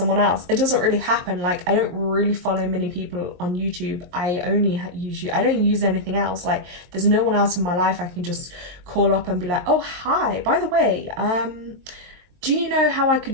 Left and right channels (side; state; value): left; late; 23 ms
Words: else, it doesn't really happen. Like, I don't really follow many people on YouTube. I only use YouTube. I don't use anything else. Like, there's no one else in my life I can just call up and be like, oh, hi, by the way, do you know how I